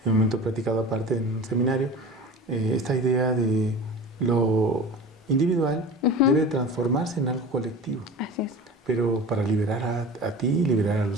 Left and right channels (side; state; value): both; normal; correlation 0.35